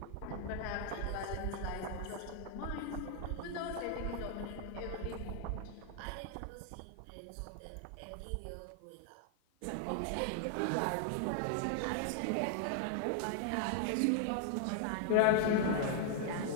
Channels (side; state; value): both; different; correlation 0.00